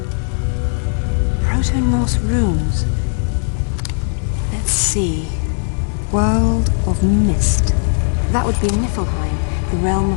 Proto-Norse runes. Let's see. World of Mist. That would be Niflheim, the realm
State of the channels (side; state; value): right; silent; 61 dB below the other